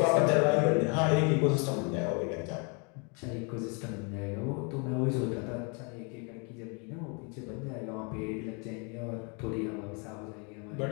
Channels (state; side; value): quieter; right; 34.4 dB